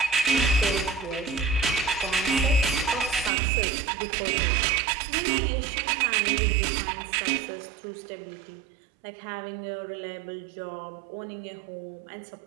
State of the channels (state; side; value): drops out; left; at 3.3 s